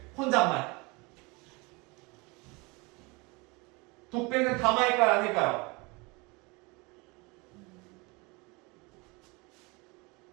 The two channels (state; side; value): quieter; left; 26.8 dB